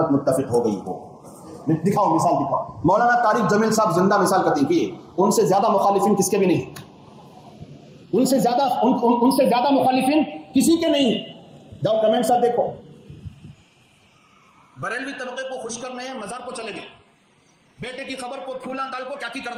متفق ہو گئی ہو. دکھاؤ, مثال دکھاؤ. مولانا طارق جمیل صاحب زندہ مثال قطعی کیے, ان سے زیادہ مخالفین کس کے بھی نہیں, ان سے زیادہ مخالفین کسی کے نہیں. جاؤ کمنٹ ساتھ دیکھو. بریلوی طبقے کو خوش کرنے ہیں, مزار کو چلے گئے. بیٹے کی خبر کو پھولا ڈال کو کیا کی کر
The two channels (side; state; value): both; identical; correlation 1.00